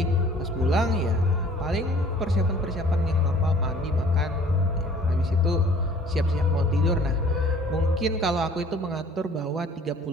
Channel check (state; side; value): normal; both; correlation 0.53